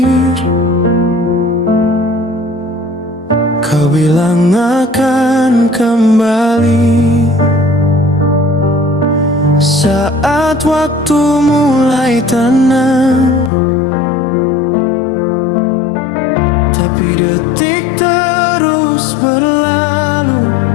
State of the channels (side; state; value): right; drops out; at 13.5 s